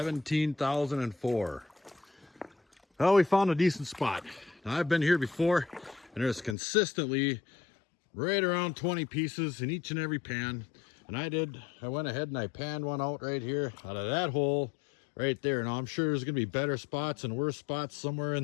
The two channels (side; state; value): right; drops out; at 6.6 s